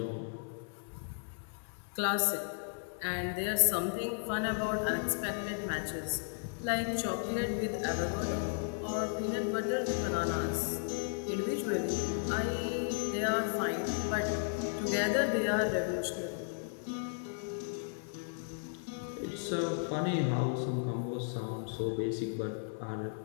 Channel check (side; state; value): right; silent; digital silence